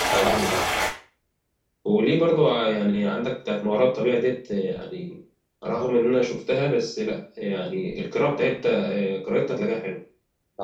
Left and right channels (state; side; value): identical; both; correlation 1.00